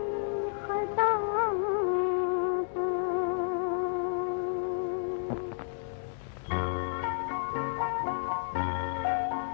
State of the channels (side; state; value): right; silent; digital silence